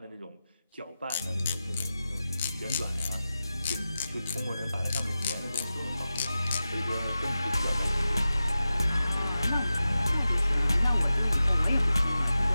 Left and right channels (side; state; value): both; inverted; correlation -0.93